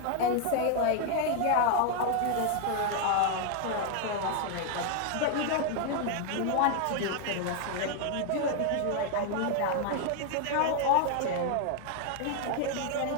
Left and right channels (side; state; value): both; different; correlation 0.00